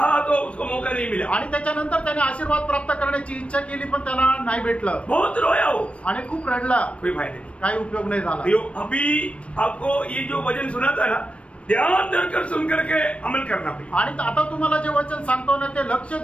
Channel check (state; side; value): late; right; 0.062 ms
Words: तो उसको मौका नहीं मिला. आणि त्याच्यानंतर त्याने आशीर्वाद प्राप्त करण्याची इच्छा केली, पण त्याला नाही भेटलं. बहुत रोया हो आणि खूप रडला. कोई फायदा नहीं, काही उपयोग नाही झाला. अभी आपको ये जो वचन सुना था ना, ध्यान धरकर सुन करके अमल करना पड़ेगा. आणि आता तुम्हाला जे वचन सांगतो ना ते लक्ष